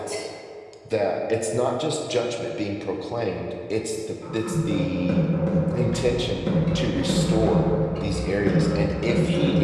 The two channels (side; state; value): both; identical; correlation 1.00